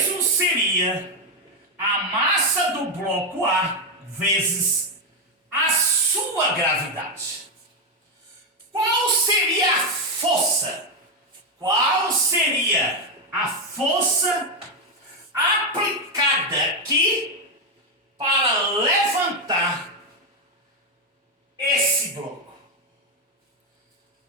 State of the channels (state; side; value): normal; both; correlation 0.06